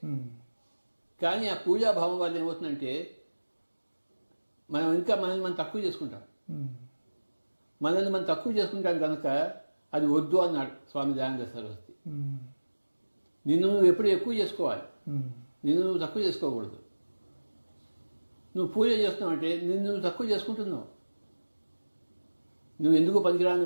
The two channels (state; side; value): inverted; both; correlation -1.00